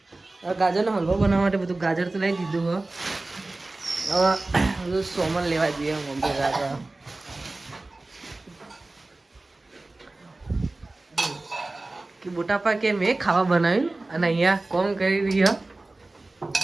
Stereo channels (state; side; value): quieter; left; 3.0 dB